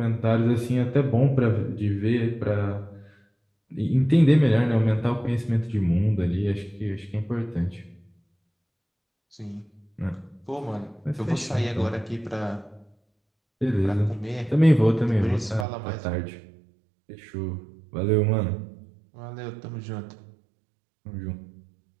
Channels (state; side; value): drops out; left; at 15.7 s